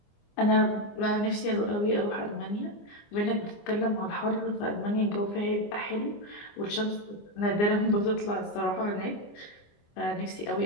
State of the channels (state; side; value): late; right; 24 ms